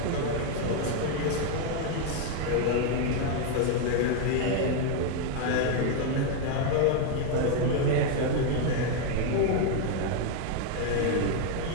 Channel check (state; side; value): different; both; correlation 0.01